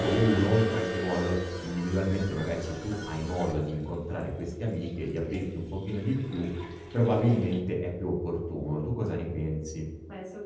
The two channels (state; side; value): identical; both; correlation 1.00